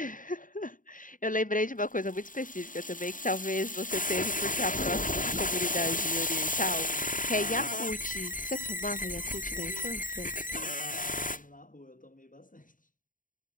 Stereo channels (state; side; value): late; right; 0.39 ms